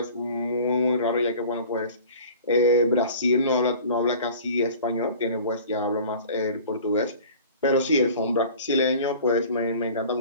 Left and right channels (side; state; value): both; inverted; correlation -0.44